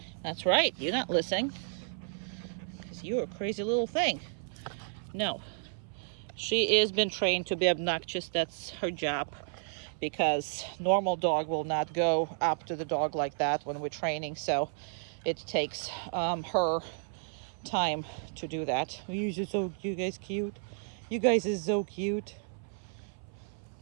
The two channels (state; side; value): silent; left; 56 dB below the other